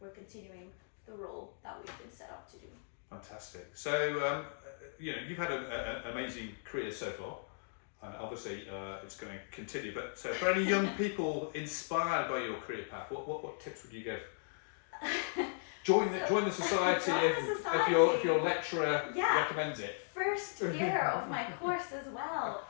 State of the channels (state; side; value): silent; right; digital silence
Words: continuing the role that we've been set up to do. Fantastic. So, you've had an amazing career so far, and obviously it's going to continue. But for any young people inspired by your career path, what tips would you give? Join the society if your lecturer recommends it. First year of my course as well.